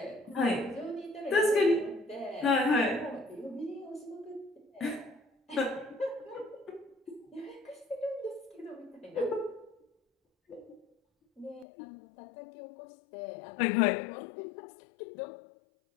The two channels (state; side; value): drops out; right; at 11.7 s